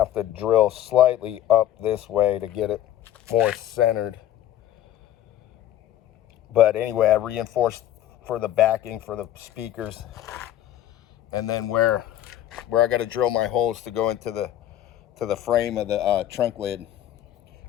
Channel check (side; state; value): right; quieter; 12.1 dB